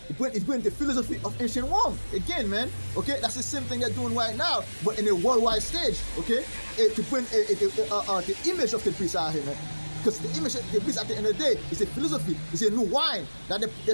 is bringing the philosophy of ancient Rome again, man. Okay, that's the same thing they're doing right now, but in a worldwide stage. Okay, to bring the image of the beast out here, man. Because the image, the beast at the end of the day is a philosophy, it's a new wine that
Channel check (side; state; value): both; inverted; correlation -1.00